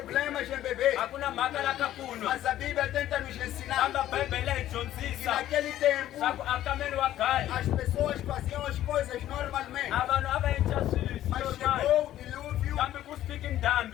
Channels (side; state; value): right; quieter; 13.0 dB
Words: em beber, mas a Bíblia tenta nos ensinar que naquele tempo as pessoas faziam as coisas normalmente, mas chegou o dilúvio